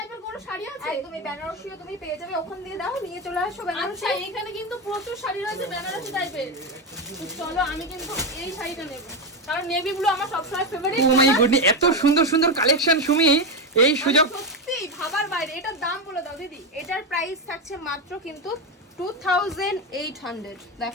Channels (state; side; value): normal; both; correlation 0.11